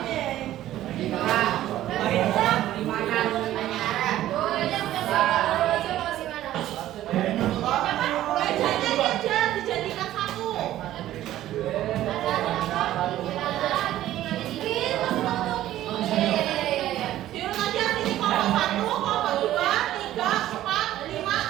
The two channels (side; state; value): left; quieter; 13.6 dB